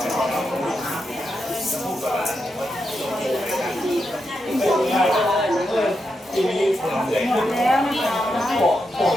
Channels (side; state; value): both; normal; correlation 0.85